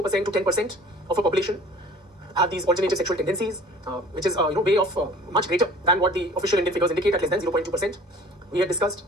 to 10% of a population have these alternative sexual tendencies, which is way of much greater than what the official Indian figures indicate, at less than 0.2%. We had discussed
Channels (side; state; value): both; normal; correlation 0.48